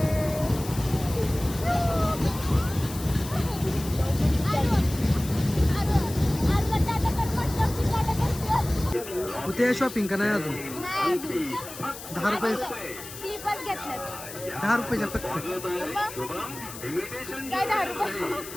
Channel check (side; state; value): left; noise; hiss, 13 dB below the sound